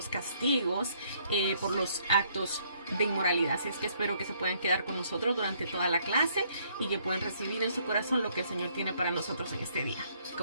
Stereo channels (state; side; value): inverted; both; correlation -0.67